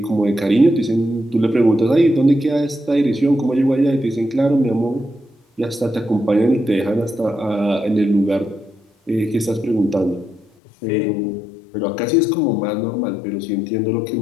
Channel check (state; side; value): drops out; right; at 10.5 s